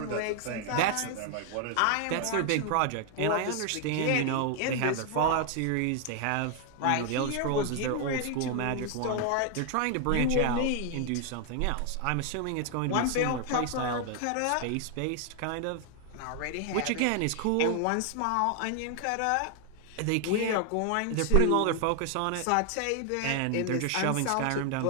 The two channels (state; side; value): different; both; correlation 0.00